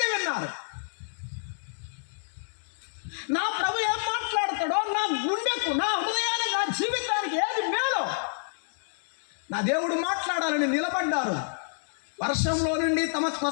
విన్నారు. నా ప్రభు ఏం మాట్లాడతాడో, నా గుండెకు, నా హృదయానికి, నా జీవితానికి ఏది మేలో నా దేవుడు మాట్లాడాలని నిలబడ్డారు. వర్షంలో నుండి తమ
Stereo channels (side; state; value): right; silent; digital silence